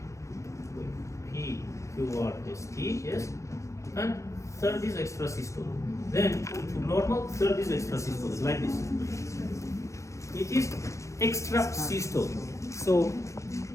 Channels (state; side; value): late; right; 0.15 ms